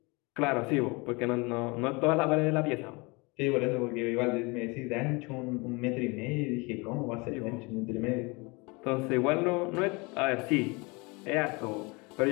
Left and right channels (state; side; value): quieter; right; 27.3 dB